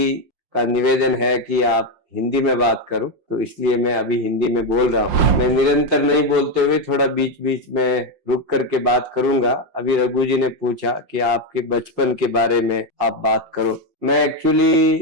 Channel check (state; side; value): late; left; 5.6 ms